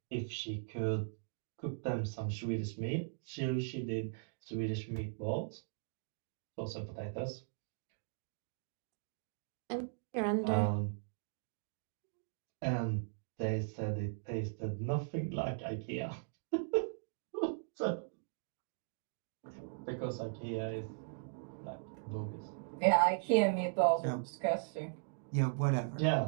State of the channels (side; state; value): left; silent; digital silence